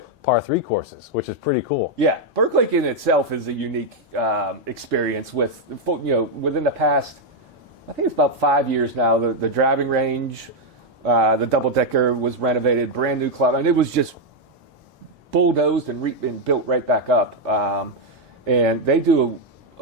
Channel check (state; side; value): normal; both; correlation 0.01